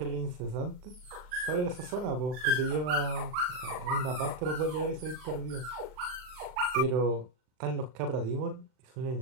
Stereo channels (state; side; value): late; left; 39 ms